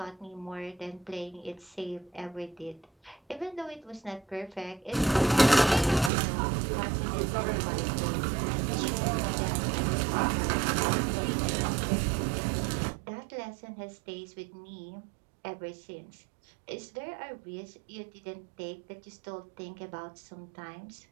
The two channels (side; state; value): left; drops out; at 6.1 s